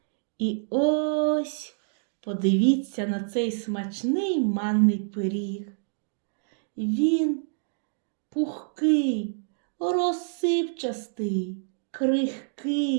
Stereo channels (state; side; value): silent; left; digital silence